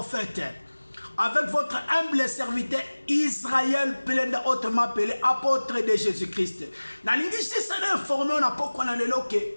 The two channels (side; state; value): both; inverted; correlation -1.00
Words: Avec votre humble serviteur Israël, Pelenda, autrement appelé apôtre de Jésus-Christ.